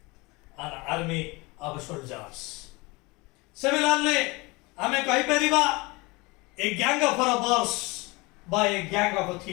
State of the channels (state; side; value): quieter; right; 24.6 dB